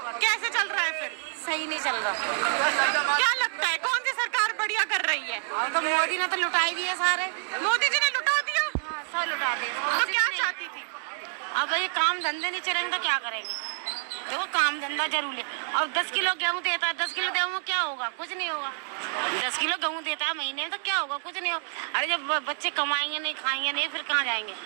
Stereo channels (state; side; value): silent; left; 58 dB below the other